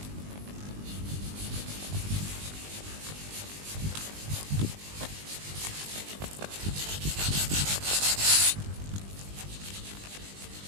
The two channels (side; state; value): left; late; 20 ms